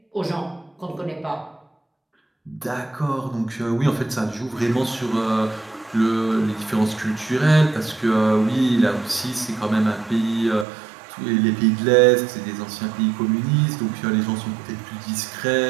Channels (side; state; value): left; drops out; at 10.7 s